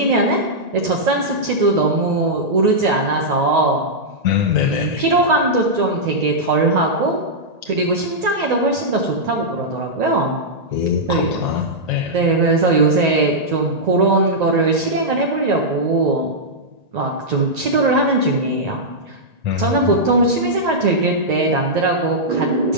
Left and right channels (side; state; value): left; late; 1.9 ms